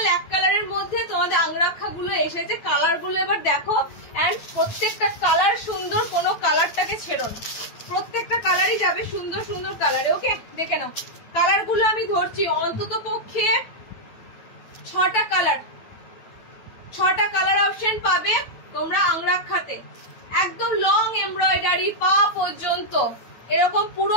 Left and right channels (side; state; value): right; late; 9.1 ms